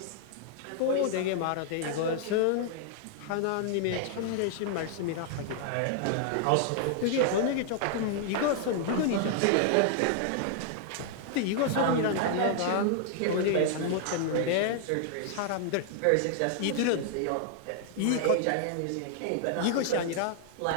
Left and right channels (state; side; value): different; both; correlation -0.01